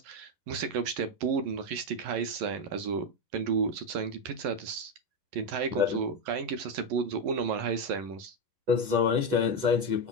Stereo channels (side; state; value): left; late; 11 ms